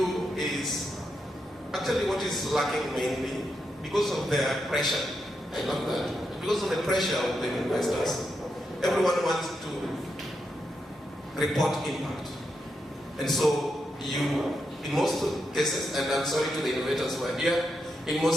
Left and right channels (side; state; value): both; normal; correlation 0.84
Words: is, actually what is lacking mainly, because of their pressure, I love that, because of the pressure of the investors, everyone wants to report impact. And so you, in most cases, and I'm sorry to the innovators who are here, in